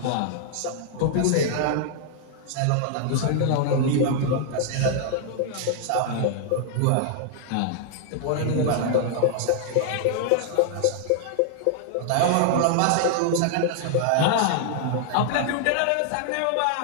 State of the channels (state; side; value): different; both; correlation 0.00